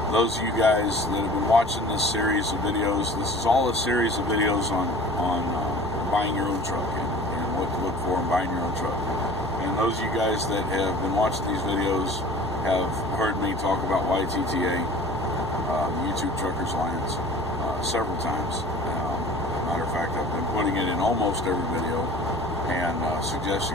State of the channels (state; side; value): normal; both; correlation 0.44